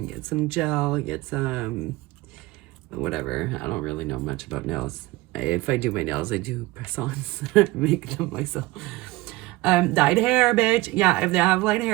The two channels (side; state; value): left; quieter; 19.5 dB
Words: some gel, get some whatever. I don't really know much about nails. If I do my nails, I do press-ons. Make them myself. Dyed hair, bitch. Yeah, if they have light